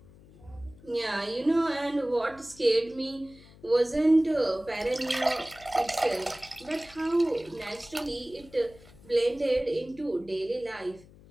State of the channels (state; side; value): noise; left; hum, 23 dB below the sound